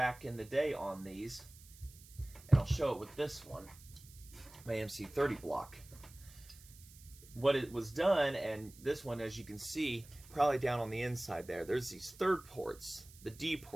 in the day on these, and I'll show it with this one, my MC30 block. What it was done, and this one, as you can see, probably down on the inside there, there's these third ports. The D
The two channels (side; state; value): right; noise; hiss, 21 dB below the sound